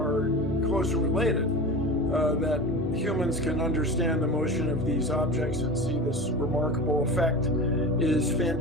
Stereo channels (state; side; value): normal; both; correlation 0.31